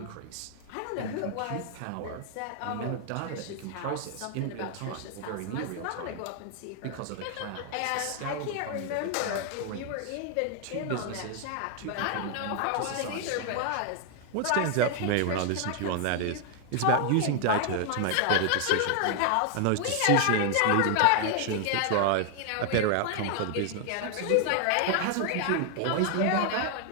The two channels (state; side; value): different; both; correlation 0.00